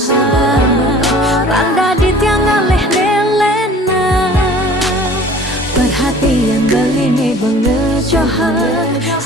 randa di tiang ngaleh nelena, perhatian beli nih bengejohan,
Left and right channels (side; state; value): both; normal; correlation 0.47